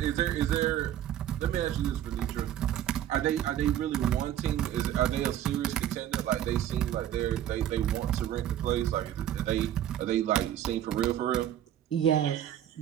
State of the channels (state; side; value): quieter; left; 11.3 dB